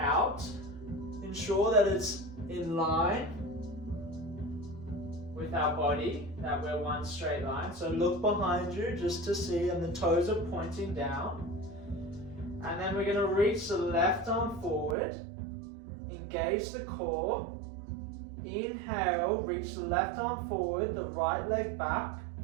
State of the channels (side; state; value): left; drops out; at 15.0 s